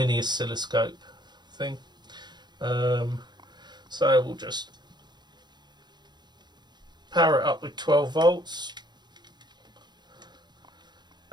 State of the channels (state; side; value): late; left; 0.21 ms